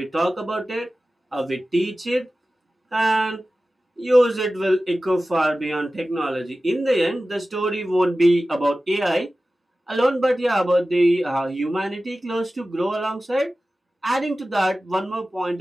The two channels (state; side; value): normal; both; correlation 0.96